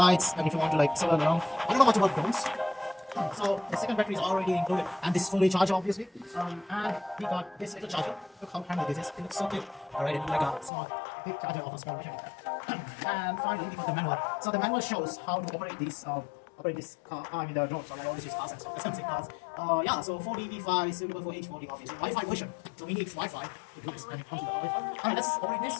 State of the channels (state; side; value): drops out; right; at 10.7 s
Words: And if you want to like swirl around, I don't know much about drones. So the second battery is already included, and this is fully charged, obviously. And we got this little charger. Look how handy this is. It looks so cute. Alright, it looks like a small, big charger of a small version. And finally, we got the manual. So the manual shows how to operate these. Operate this car, the drone. So I always use cars and stuff. Let's say cars. Yeah. So 4D-V5 is suitable for H40, obviously. Wi-Fi version. So we need Wi-Fi to do this, and it comes with the Wi-Fi. Alright, let's operate